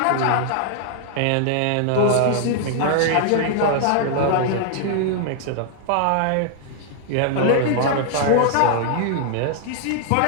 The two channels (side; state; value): both; different; correlation 0.00